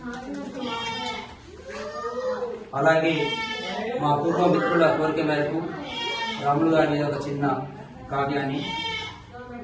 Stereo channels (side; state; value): both; identical; correlation 1.00